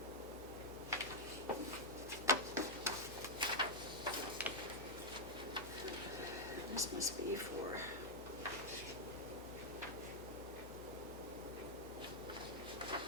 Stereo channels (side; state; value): both; normal; correlation -0.04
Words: This must be for.